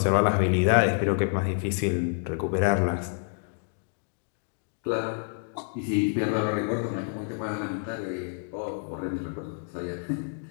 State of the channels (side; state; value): right; silent; 59 dB below the other